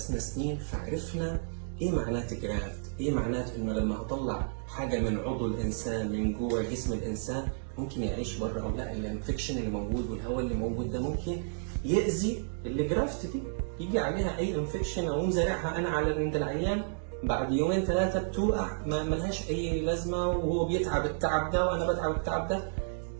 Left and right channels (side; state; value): left; silent; digital silence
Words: سنين، فعرفنا ايه معنات جرافت، ايه معنات انه لما اطلع حاجه من عضو الانسان من جوه جسم الانسان ممكن يعيش بره او لا. الانفكشن اللي موجود والهواء اللي موجود ده ممكن يأذي الجرافت دي، يجي عليها اي انفكشن او مزارعها انا على عند العيان بعد يومين 3 بتوقع ما لهاش اي لازمه، وهو بيتعب التعب ده وانا بتعب التعب ده.